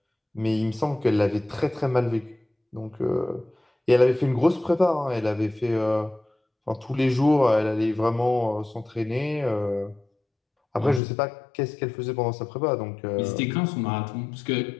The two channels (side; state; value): right; drops out; at 11.0 s